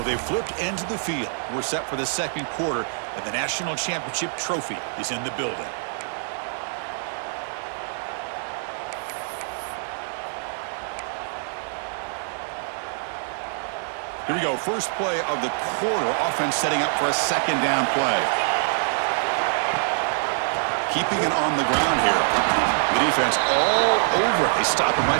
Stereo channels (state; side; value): silent; left; digital silence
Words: they've flipped into the field. We're set for the second quarter, and the national championship trophy is in the building. Here we go. First play of the quarter. Offense setting up for a second down play. Keeping it on the ground here. The defense all over it. They stop him